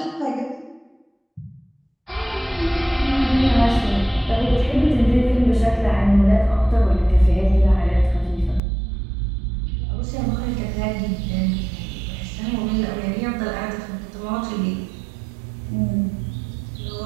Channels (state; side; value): drops out; left; at 8.6 s